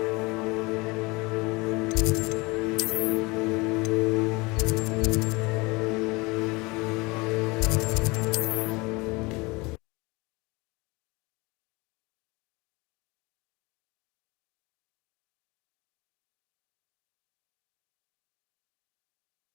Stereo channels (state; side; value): quieter; right; 25.1 dB